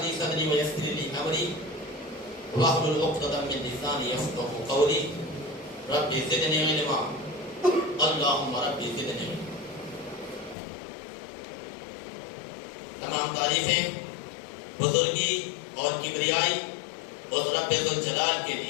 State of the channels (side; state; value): right; drops out; at 10.6 s